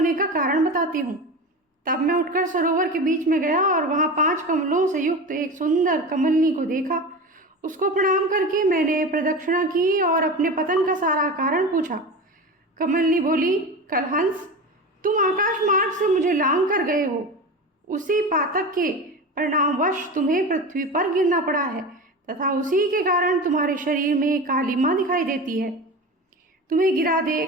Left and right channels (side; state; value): both; normal; correlation 0.28